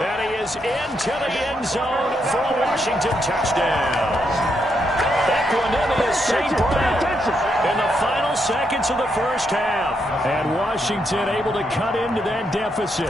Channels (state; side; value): normal; both; correlation 0.79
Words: he is into the end zone for a Washington touchdown. Equanimous St. Brown in the final seconds of the first half. And Washington able to cut into that